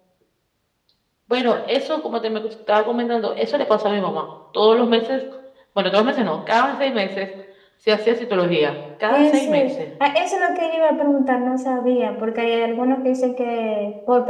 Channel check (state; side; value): identical; both; correlation 1.00